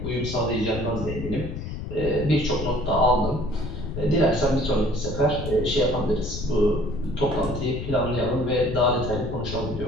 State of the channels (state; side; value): noise; left; rumble, 6 dB below the sound